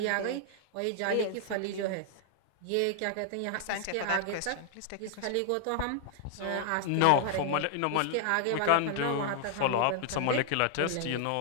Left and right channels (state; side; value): different; both; correlation 0.00